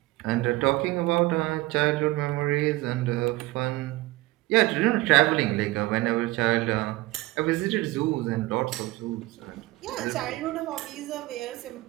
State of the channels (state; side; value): quieter; left; 19.3 dB